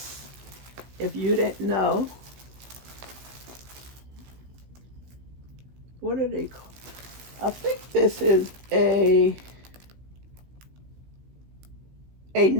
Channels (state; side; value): late; left; 16 ms